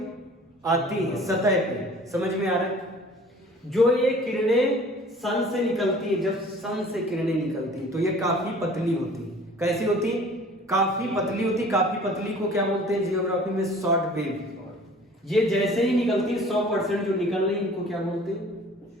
आती है सतह पे। समझ में आ रहा है? जो ये किरणें सन से निकलती है, जब सन से किरणें निकलती है तो ये काफी पतली होती है। कैसी होती, काफी पतली होती। काफी पतली को क्या बोलते हैं जियोग्राफी में, शॉर्ट वेव। ये जैसे ही निकलती है 100% जो निकल रही है इनको क्या बोलते हैं,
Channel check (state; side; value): normal; both; correlation 0.49